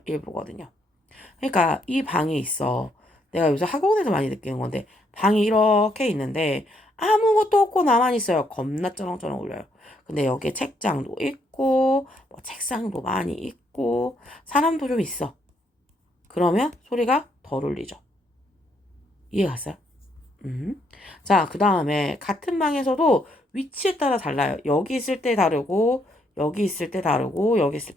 일부거든요. 그러니까 이 방이 있어. 내가 요새 학원에서 많이 느끼는 건데 방이 이렇게 있는데 아무것도 없고 나만 있어요. 겁나 쩌렁쩌렁 울려요. 근데 여기에 책장도 있고 뭐 책상도 많이 있고 사람도 좀 있어. 그러면 소리가 덜 울리죠. 이해 갔어요? 자, 그 다음에 같은 방에서도 위치에 따라 달라요. 여기 있을 때 다르고 여기 있을 때 다르고 여기 있을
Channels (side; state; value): both; normal; correlation 0.73